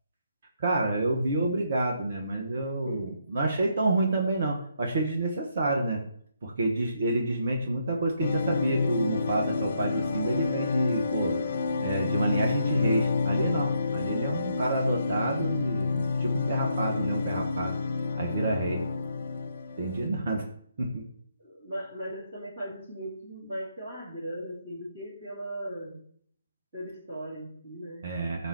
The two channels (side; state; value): both; inverted; correlation -0.75